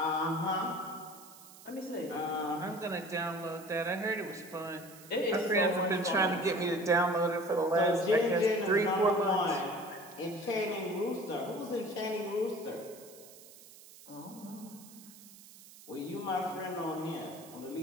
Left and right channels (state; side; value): noise; right; hiss, 20 dB below the sound